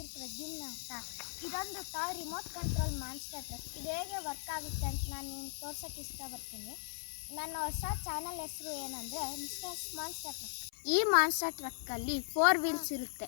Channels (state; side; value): silent; right; 52 dB below the other